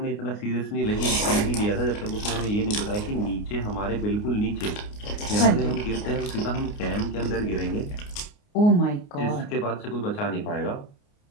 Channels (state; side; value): late; right; 29 ms